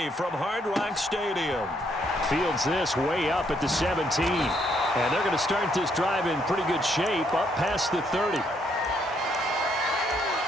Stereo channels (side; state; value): both; normal; correlation 0.72